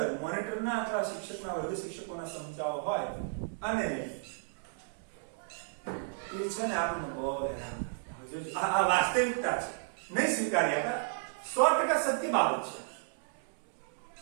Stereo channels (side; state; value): left; silent; 56 dB below the other